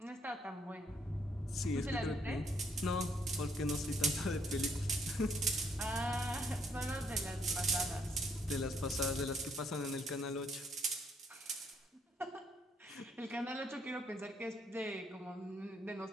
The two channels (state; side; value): normal; both; correlation 0.70